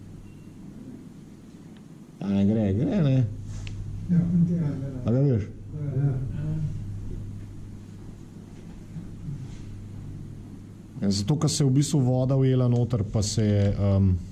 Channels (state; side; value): identical; both; correlation 1.00